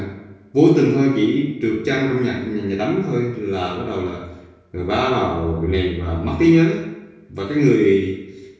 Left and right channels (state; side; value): identical; both; correlation 1.00